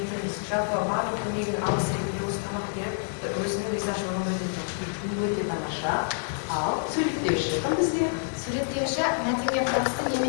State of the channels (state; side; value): silent; right; digital silence